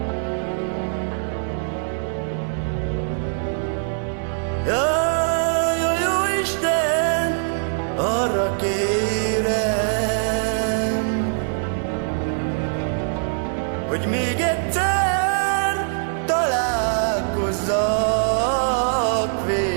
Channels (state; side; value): silent; left; 63 dB below the other